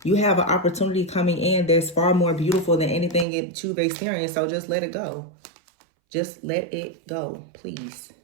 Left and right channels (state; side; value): drops out; left; at 3.2 s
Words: You have an opportunity coming in that's far more beautiful than anything that you've experienced. So just let it go. Just let it go, please.